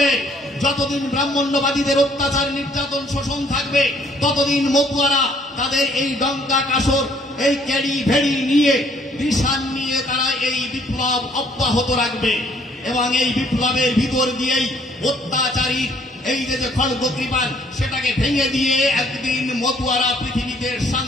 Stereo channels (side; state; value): both; normal; correlation 0.62